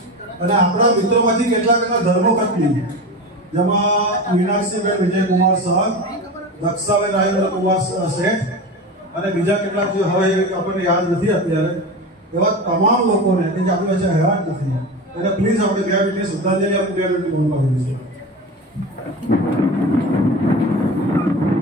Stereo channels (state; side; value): normal; both; correlation 0.27